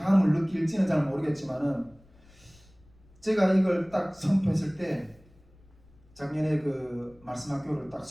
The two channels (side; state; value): left; noise; rumble, 28 dB below the sound